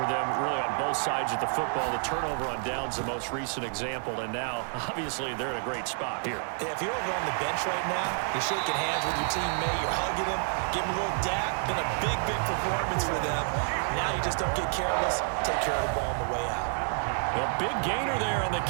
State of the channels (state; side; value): silent; left; 56 dB below the other